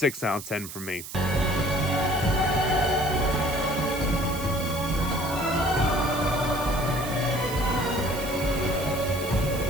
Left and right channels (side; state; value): right; noise; hiss, 11 dB below the sound